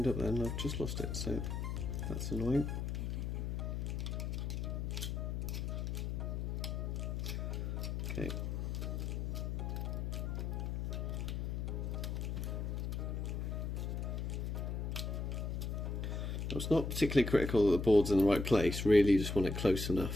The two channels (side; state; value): left; noise; hum, 2 dB below the sound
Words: up there and I've just lost it, so that's annoying. Okay. It's not particularly critical that the board's in the right place, really you just want it close